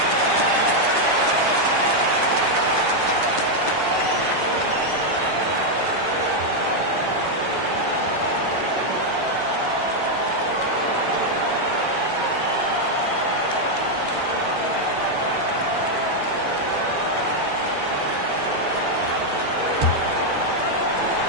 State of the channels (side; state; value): left; late; 7.9 ms